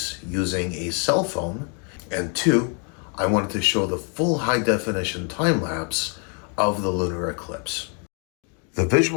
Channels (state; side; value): quieter; right; 38.4 dB